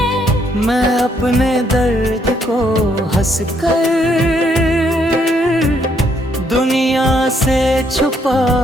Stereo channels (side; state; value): both; normal; correlation 0.71